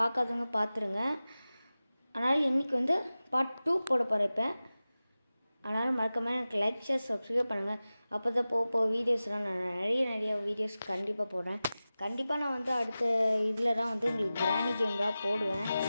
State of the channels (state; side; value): inverted; both; correlation -0.96